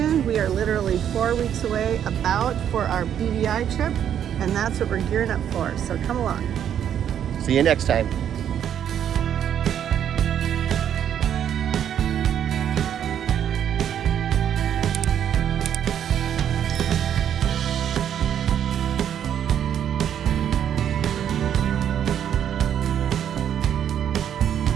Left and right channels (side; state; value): left; quieter; 9.5 dB